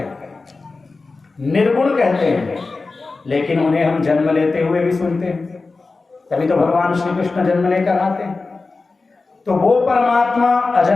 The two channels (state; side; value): quieter; right; 3.8 dB